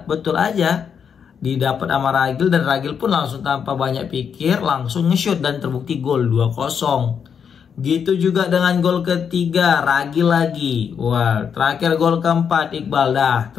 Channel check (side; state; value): right; quieter; 7.2 dB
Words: aja didapat sama Ragil, dan Ragil pun langsung tanpa banyak pikir langsung nge-shoot dan terbukti gol 2-0. Gitu juga dengan gol ketiga Ragil lagi. Wah, terakhir gol keempat Iqbal. Dah,